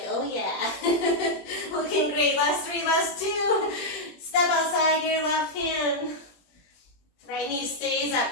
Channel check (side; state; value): right; late; 21 ms